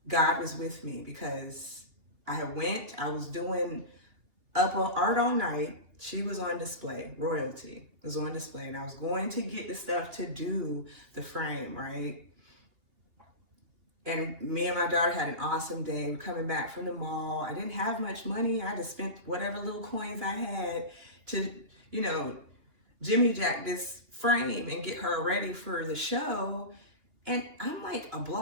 God was with me because I was doing up on art all night. She was on display, royalty was on display, and I was going to get the stuff to do the frame, right? And me and my daughter had an awesome day. We're coming back from the mall. I didn't have much money. I just spent whatever little coins I had to, Jimmy Jack this frame and get her ready for the show. And I'm like a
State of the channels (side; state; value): left; late; 2.9 ms